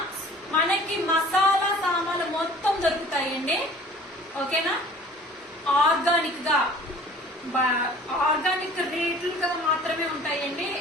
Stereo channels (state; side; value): normal; both; correlation 0.48